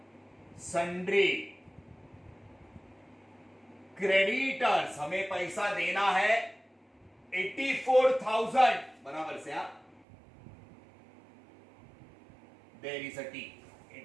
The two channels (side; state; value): left; drops out; at 10.1 s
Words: सन्ड्री क्रेडिटर्स, हमें पैसा देना है 84,000, बराबर से आप, there is a T,